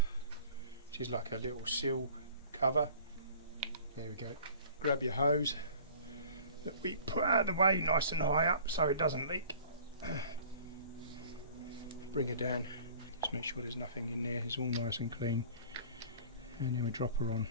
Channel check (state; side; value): inverted; both; correlation -0.46